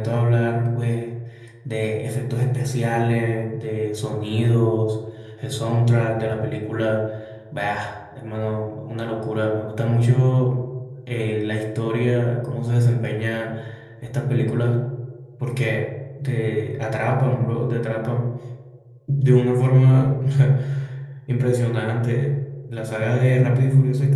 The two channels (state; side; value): identical; both; correlation 1.00